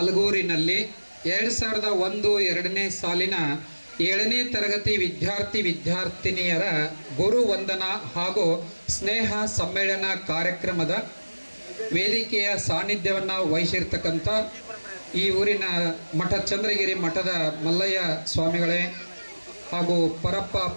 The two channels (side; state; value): both; inverted; correlation -1.00